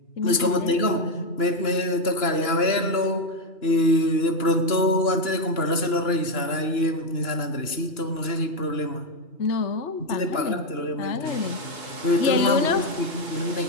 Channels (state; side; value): late; right; 2.9 ms